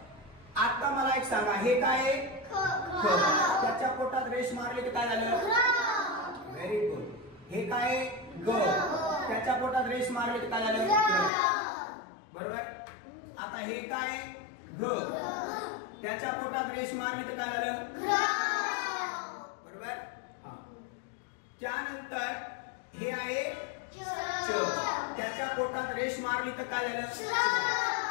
आता मला एक सांगा, हे काय? ख. त्याच्या पोटात रेष मारली तर काय झालं? Very good. हे काय? ग. त्याच्या पोटात रेष मारली तर काय झालं? बरोबर. आता हे काय? घ. त्याच्या पोटात रेष मारली तर काय झालं? बरोबर. त्यानंतर हे आहे च. त्याच्या पोटात रेष मारली तर काय झालं?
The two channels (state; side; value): drops out; right; at 11.3 s